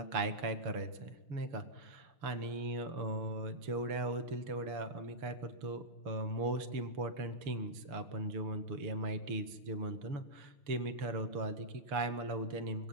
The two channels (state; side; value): late; left; 6.8 ms